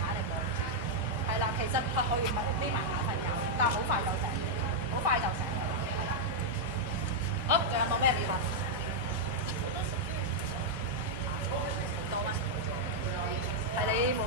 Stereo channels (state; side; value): normal; both; correlation -0.04